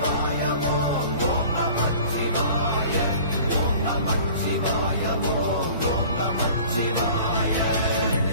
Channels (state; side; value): inverted; both; correlation -0.45